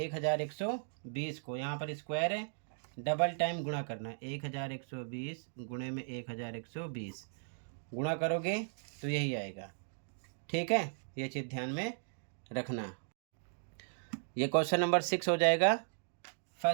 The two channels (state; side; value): silent; left; digital silence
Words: को यहाँ पर स्क्वायर है, डबल टाइम गुणा करना। 1120 गुणे में 1120 गुणा करोगे तो यही आएगा। ठीक है, ये चीज़ ध्यान में रखना। ये क्वेश्चन नंबर 6 हो जाएगा